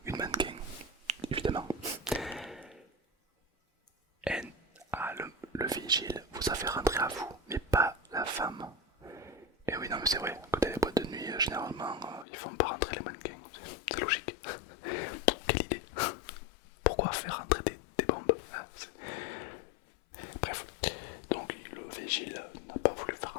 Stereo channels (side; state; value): right; drops out; at 12.2 s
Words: une mannequin, évidemment. Et le vigile vous a fait rentrer à vous, mais pas la femme. Et oui, non, mais c'est vrai, quand il y a les boîtes de nuit, généralement, ils font pas rentrer les mannequins. C'est logique. Quelle idée. Pourquoi faire rentrer des bombes, hein? Bref, donc le vigile n'a pas voulu faire